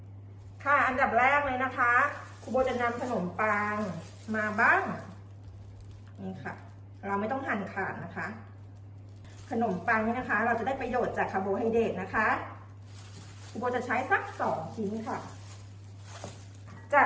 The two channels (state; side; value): identical; both; correlation 1.00